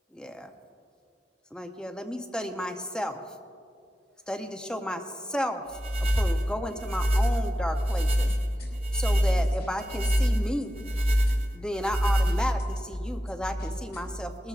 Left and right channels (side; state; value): both; normal; correlation 0.92